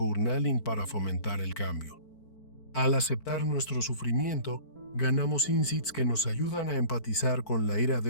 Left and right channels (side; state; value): right; late; 4.5 ms